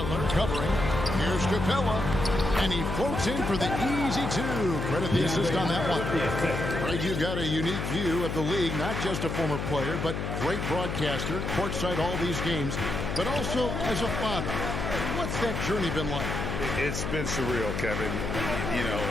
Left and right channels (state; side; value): noise; left; hum, 3 dB below the sound